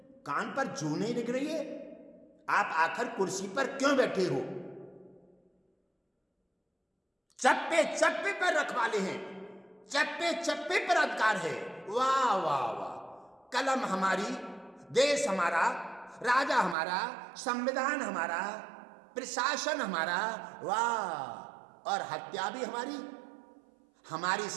कान पर जू नहीं लग रही है। आप आखिर कुर्सी पर क्यों बैठे हो? चप्पे चप्पे पर रखवाले हैं, चप्पे चप्पे पर अधिकार है। वाह वाह वाह, कलम हमारी, देश हमारा, राजा हमारा, संविधान हमारा, प्रशासन हमारा, वाह, और हत्या भी हमारी, हमारी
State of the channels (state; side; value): drops out; left; at 16.8 s